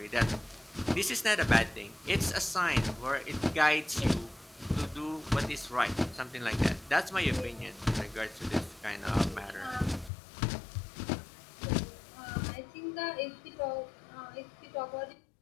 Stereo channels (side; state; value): right; drops out; at 10.1 s